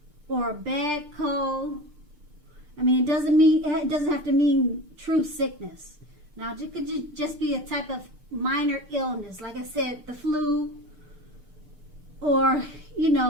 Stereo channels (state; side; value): late; left; 6.7 ms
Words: or a bad cold. I mean, it doesn't have to mean true sickness. Now, it could just be a type of minor illness, like I said, the flu, or